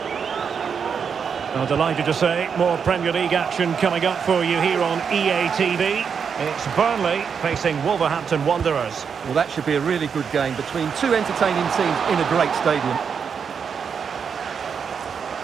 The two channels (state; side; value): quieter; left; 6.6 dB